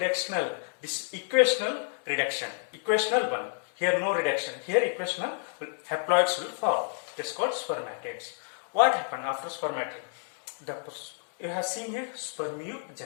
this is equational reduction, equational one. Here no reduction, here equational haploids will form. This is called spermatids. What happened after spermatid? You have seen here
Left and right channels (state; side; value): silent; right; 58 dB below the other